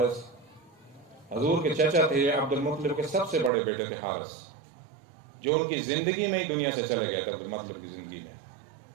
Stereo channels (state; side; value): drops out; left; at 3.5 s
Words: حضور کے چچا تھے، عبد المطلب کے سب سے بڑے بیٹے تھے حارث، جو ان کی زندگی میں ہی دنیا سے چلے گئے تھے، عبد المطلب کی زندگی میں۔